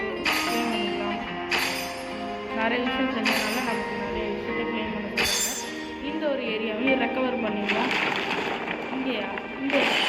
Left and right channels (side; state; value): both; identical; correlation 1.00